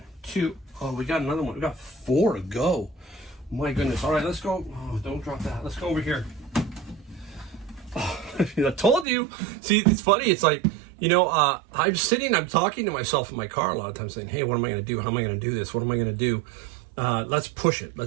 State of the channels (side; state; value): left; drops out; at 9.1 s